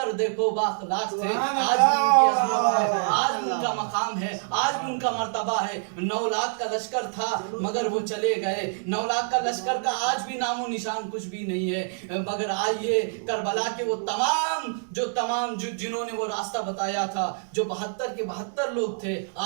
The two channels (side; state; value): left; silent; digital silence